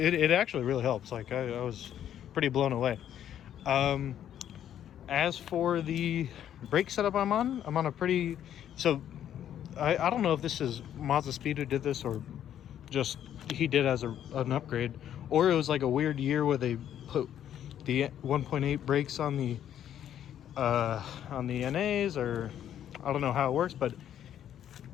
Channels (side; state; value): right; quieter; 10.4 dB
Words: actually really helps. Like I was pretty blown away. As for the brake setup I'm on a pretty, so I don't know if this is Mazda Speed who did this, or just he did as an upgrade, or it was like a weird year where they put the 1.8 brakes on the NAs, or I don't know how it works, but